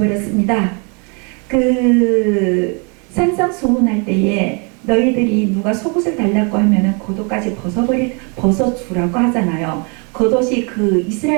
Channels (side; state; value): left; quieter; 34.4 dB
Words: 그 산상수훈할 때에 너희들이 누가 속옷을 달라고 하면은 겉옷까지 벗어주라고 하잖아요. 겉옷이 그